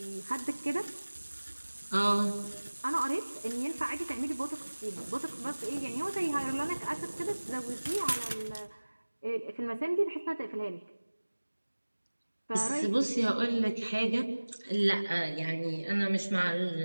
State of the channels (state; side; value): inverted; both; correlation -1.00